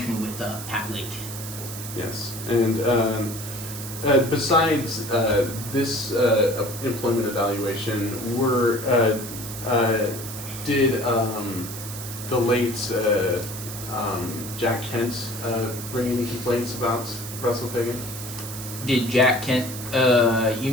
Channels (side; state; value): right; noise; hiss, 10 dB below the sound